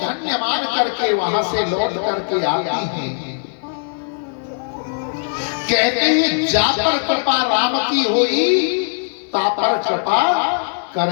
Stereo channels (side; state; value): right; silent; digital silence